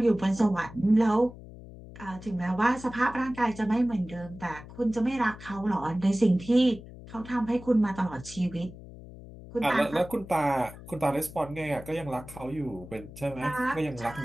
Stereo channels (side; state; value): left; noise; hum, 16 dB below the sound